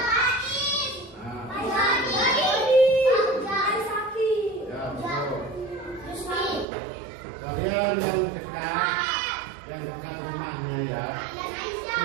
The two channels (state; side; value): drops out; left; at 6.7 s